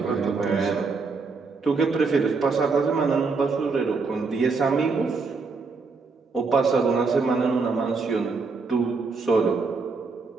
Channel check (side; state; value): left; quieter; 4.4 dB